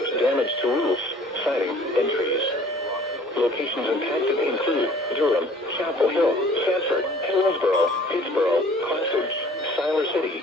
damage to roofs, siding, and trees. Locations impacted include Durham, Chapel Hill, Sanford, Hillsborough, Pittsboro, Classage, Siler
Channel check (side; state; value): both; normal; correlation 0.52